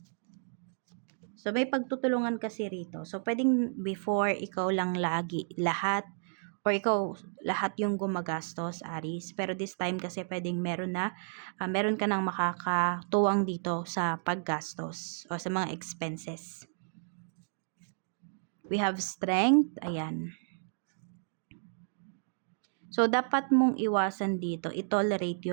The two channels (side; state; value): left; silent; digital silence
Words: So, may pagtutulungan kasi rito. So, pwedeng before, ikaw lang lagi, lahat, or ikaw, lahat yung gumagastos, Aries. Pero this time kasi pwedeng meron ka nang makakatuwang dito sa paggastos o sa mga expenses. We have Strength. Ayan. So, dapat mong iwasan dito, i-tolerate